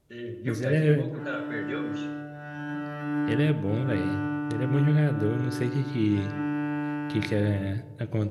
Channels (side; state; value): both; identical; correlation 1.00